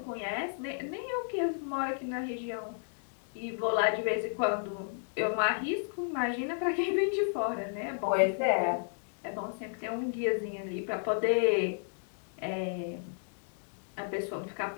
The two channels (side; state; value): right; silent; digital silence